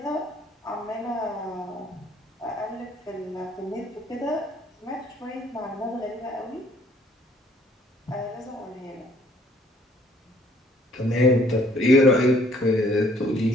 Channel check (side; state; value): both; normal; correlation 0.61